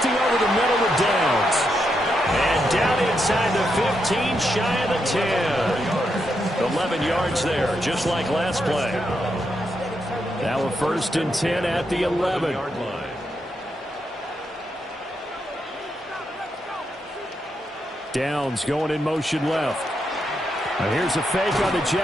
over the middle with Downs. And down inside the 15, shy of the 10. 11 yards there, just like last play. Now a 1st and 10 at the 11. Downs going in motion left. Now here's a fake on the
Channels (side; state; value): both; normal; correlation 0.82